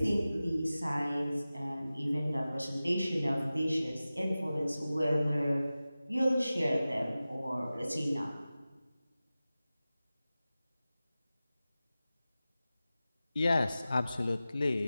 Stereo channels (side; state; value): both; inverted; correlation -0.96